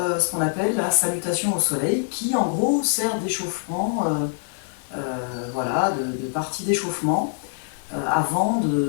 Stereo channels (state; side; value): silent; right; digital silence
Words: ce qu'on appelle la salutation au soleil, qui en gros sert d'échauffement, voilà, de partie d'échauffement avant